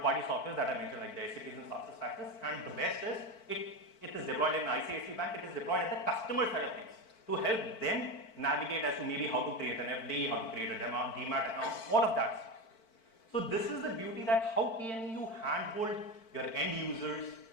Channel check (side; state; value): right; late; 4.5 ms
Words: software that I mentioned, like the SAPs and SuccessFactors. And the best is, it is deployed in ICICI Bank. It is deployed at the customer side of things to help them navigate as to maybe how to create an FD, how to create a Demat account, all of that. So this is the beauty, that how can you handhold your end users